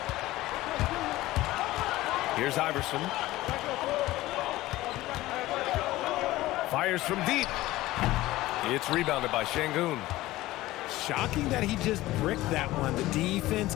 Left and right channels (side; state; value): right; quieter; 17.2 dB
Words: Here's Iverson. Fires from deep. It's rebounded by Şengün. Shocking that he just bricked that one. The defense